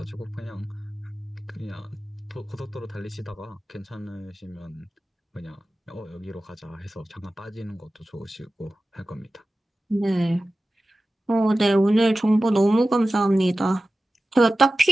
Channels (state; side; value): normal; both; correlation 0.95